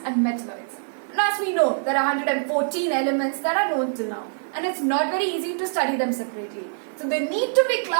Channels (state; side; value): silent; left; 62 dB below the other